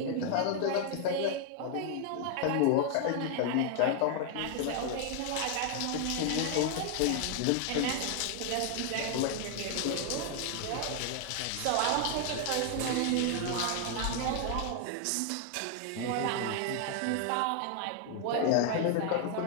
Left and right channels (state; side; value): different; both; correlation 0.00